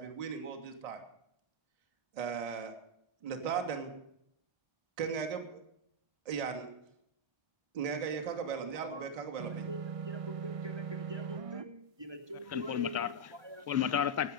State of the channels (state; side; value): late; left; 1.6 ms